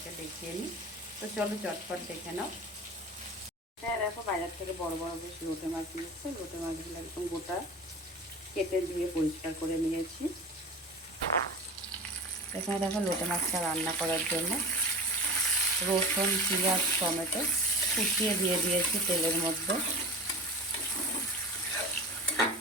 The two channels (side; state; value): both; normal; correlation 0.33